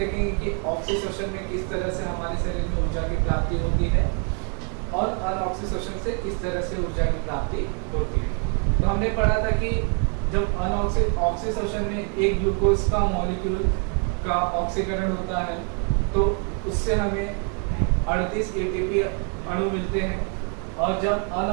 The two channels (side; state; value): left; quieter; 39.4 dB